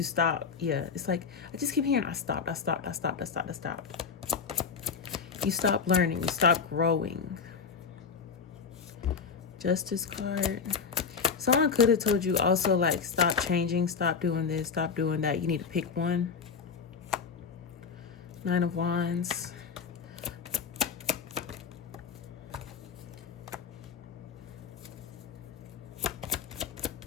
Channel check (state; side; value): quieter; right; 5.8 dB